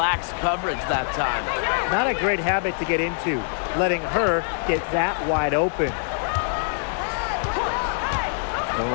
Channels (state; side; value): silent; right; digital silence